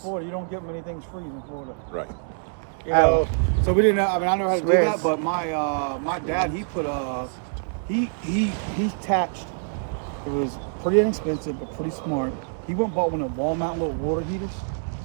You don't get many things freeze in Florida. Right. You know, so we didn't know. I mean, I know how to do that, Swiss. but my dad, he put he attached. It was pretty inexpensive, but pretty smart. He went and bought one of the wall mount little water heaters.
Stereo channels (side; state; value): left; silent; digital silence